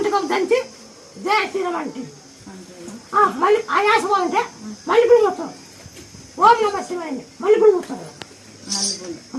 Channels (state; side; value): identical; both; correlation 1.00